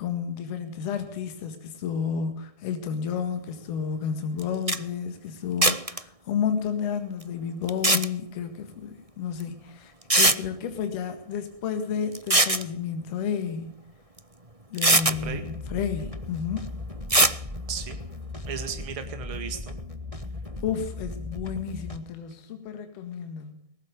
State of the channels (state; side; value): late; left; 1.6 ms